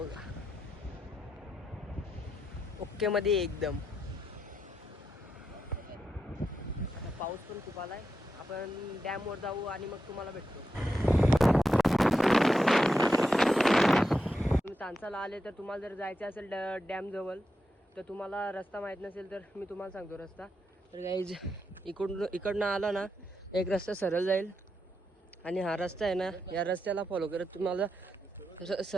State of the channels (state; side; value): normal; both; correlation 0.86